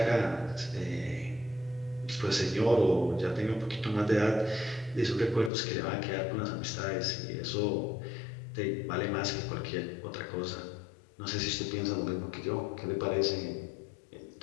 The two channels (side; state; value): right; drops out; at 5.5 s